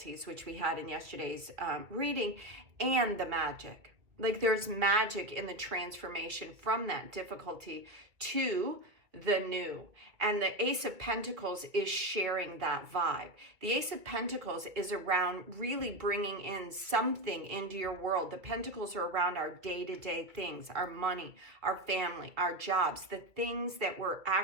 which we had in yesterday's reading, and the magic. Like, there's magic in the transformation from that difficulty to the new. And the Ace of Pentacles is sharing that vibe. The Ace of Pentacles is around really bringing in something into your world. The Pentacles are around our day-to-day things, our money, our family, our jobs, the things that we're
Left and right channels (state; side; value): late; left; 2.2 ms